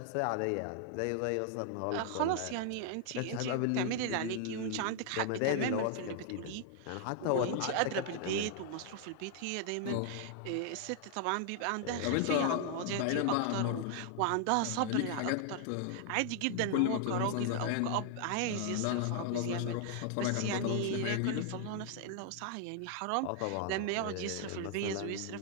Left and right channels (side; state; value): both; different; correlation 0.00